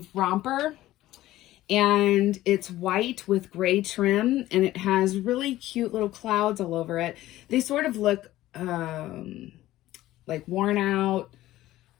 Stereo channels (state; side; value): quieter; right; 15.4 dB